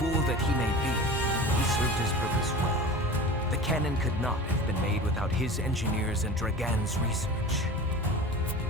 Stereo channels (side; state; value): both; normal; correlation 0.35